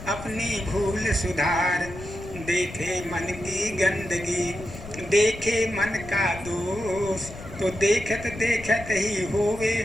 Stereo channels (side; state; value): left; noise; rumble, 14 dB below the sound